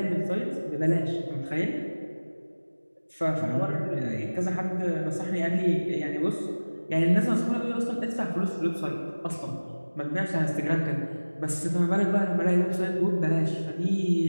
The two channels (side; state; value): both; inverted; correlation -1.00